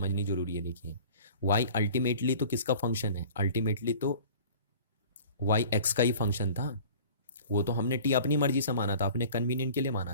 जरूरी है। देखिए y अल्टीमेटली तो किसका फंक्शन है? अल्टीमेटली तो y x का ही फंक्शन था, वो तो हमने t अपनी मर्जी से माना था, अपने कन्वीनियंट के लिए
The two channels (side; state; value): both; inverted; correlation -0.44